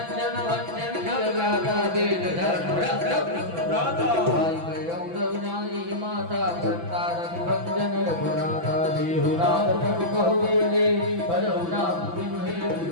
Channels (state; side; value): late; left; 6.0 ms